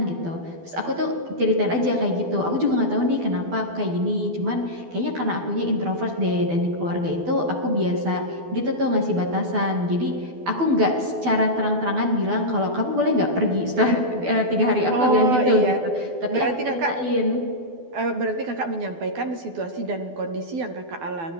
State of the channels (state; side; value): late; left; 12 ms